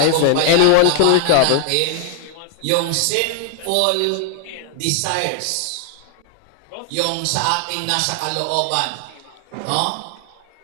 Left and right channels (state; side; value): different; both; correlation 0.00